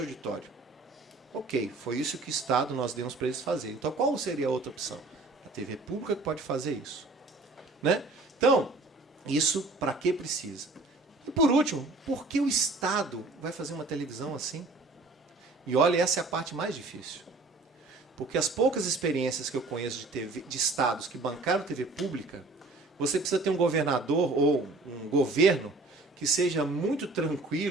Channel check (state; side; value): quieter; left; 3.3 dB